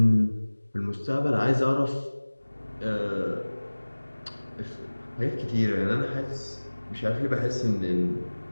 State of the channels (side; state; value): both; inverted; correlation -1.00